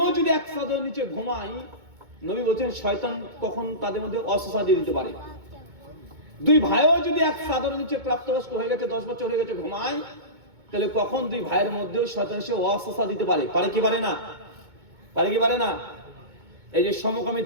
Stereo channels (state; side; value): late; left; 2.2 ms